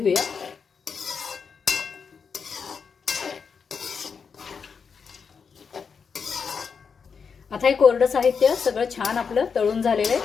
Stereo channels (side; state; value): right; quieter; 5.9 dB